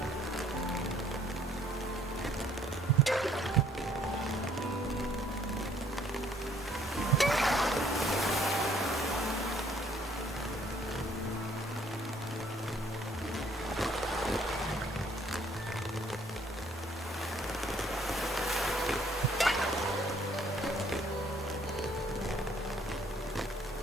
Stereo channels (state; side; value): normal; both; correlation 0.62